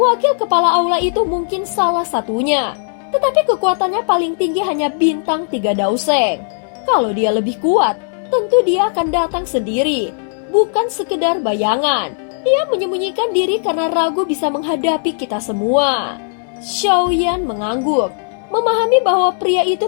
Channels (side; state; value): right; silent; digital silence